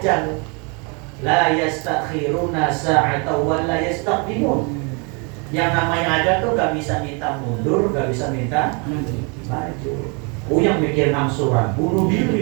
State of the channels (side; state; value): left; quieter; 33.4 dB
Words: La yastakhiruna sa'atan wa la yastaqdimun. Yang namanya ajal tuh nggak bisa minta mundur, nggak bisa minta maju. Yang mikir angsuran, bunuh